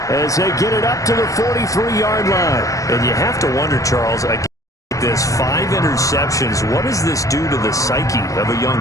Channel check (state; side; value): late; right; 0.16 ms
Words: as they get it up to the 43-yard line. And you have to wonder, Charles, again, this. 5 interceptions. What does this do to the psyche of a young